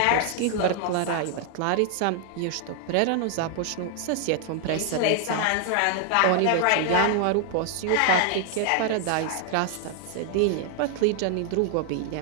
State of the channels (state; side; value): different; both; correlation 0.00